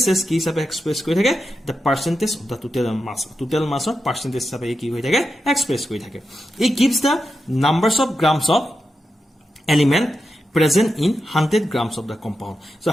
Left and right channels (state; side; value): normal; both; correlation 0.88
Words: কি হিচাপে এক্সপ্ৰেছ কৰি থাকে the percentage of the total mass of percentage হিচাপে কি হৈ থাকে এক্সপ্ৰেছ কৰি থাকে it gives the numbers of grams of element present in 100 grams of the compound. So